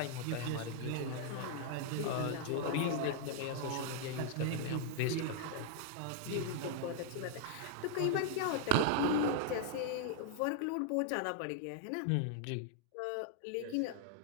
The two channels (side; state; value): both; different; correlation 0.00